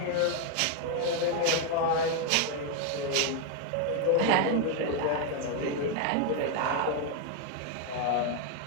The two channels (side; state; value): both; different; correlation 0.01